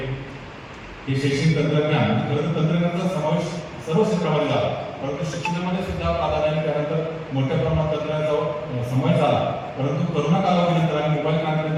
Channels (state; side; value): identical; both; correlation 1.00